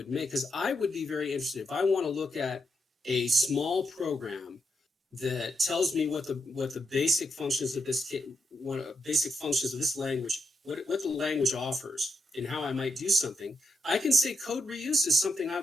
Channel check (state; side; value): normal; both; correlation 0.82